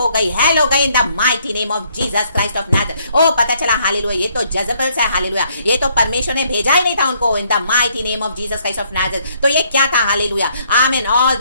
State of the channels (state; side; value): inverted; both; correlation -0.68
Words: गई इन द माइटी नेम ऑफ जीसस क्राइस्ट ऑफ नाज़रेथ। ओ पता चला हालेलुया ये तो जेजबेल्स है हालेलुया, ये तो परमेश्वर ने भेजा ही नहीं था उनको इन द माइटी नेम ऑफ जीसस क्राइस्ट ऑफ नाज़रेथ। तो ये क्या था हालेलुया आमीन। ऑल